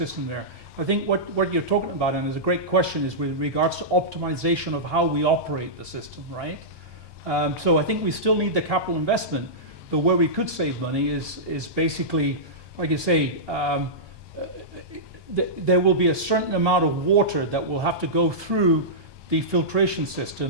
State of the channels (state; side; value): late; left; 1.2 ms